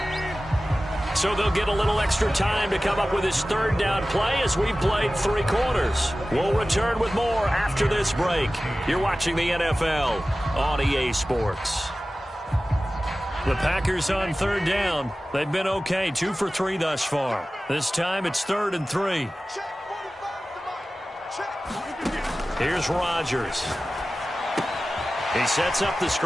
So they'll get a little extra time to come up with his third down play as we've played 3 quarters. We'll return with more after this break. You're watching the NFL on EA Sports. The Packers on third down. They've been okay, 2 for 3 thus far. This time it's 3rd and 3. Here's Rodgers. He sets up the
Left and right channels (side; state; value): both; normal; correlation 0.96